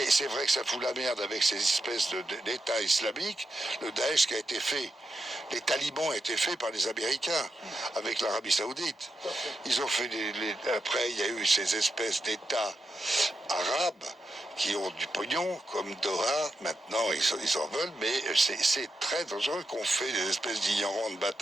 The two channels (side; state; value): both; normal; correlation 0.86